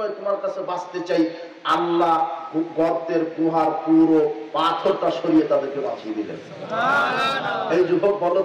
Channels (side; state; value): both; identical; correlation 1.00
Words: তোমার কাছে বাঁচতে চাই। আল্লাহ গর্তের গুহার পুরো পাথরটা সরিয়ে তাদেরকে বাঁচিয়ে দিলেন। এই যুবক বলো